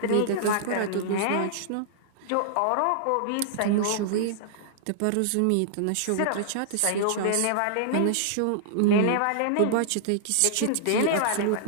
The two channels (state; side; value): different; both; correlation -0.01